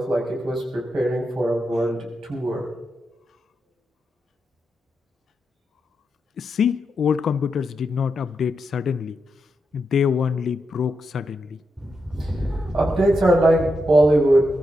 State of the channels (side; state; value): both; normal; correlation 0.85